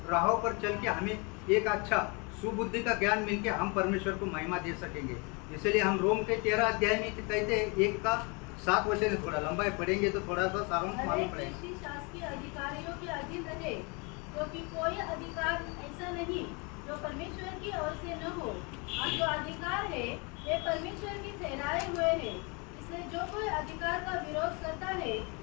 राहों पर चल के हमें एक अच्छा सुबुद्धि का ज्ञान मिलके हम परमेश्वर को महिमा दे सकेंगे. इसलिए हम रोम के 13 अध्याय में कहते हैं 1 का 7 वचन है. थोड़ा लंबा पढ़ेंगे तो थोड़ा सा सारांश मालूम पड़ेगा. व्यक्ति शासकीय अधिकारियों के अधीन रहे, क्योंकि कोई अधिकार ऐसा नहीं जो परमेश्वर की ओर से न हो, और जो अधिकार है वे परमेश्वर के ठहराए हुए हैं. इसलिए जो कोई अधिकार का विरोध करता है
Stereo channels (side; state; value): right; quieter; 31.0 dB